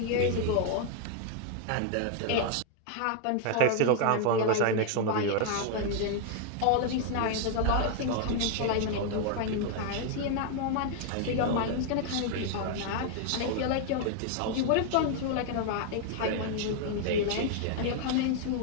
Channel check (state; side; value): different; both; correlation 0.00